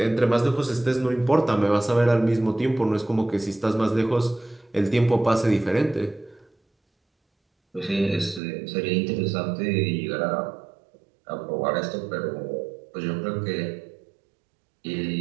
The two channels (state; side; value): drops out; left; at 8.4 s